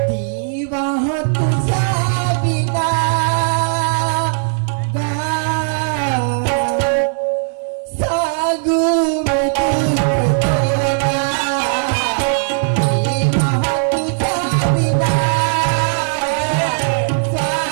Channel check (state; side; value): silent; left; digital silence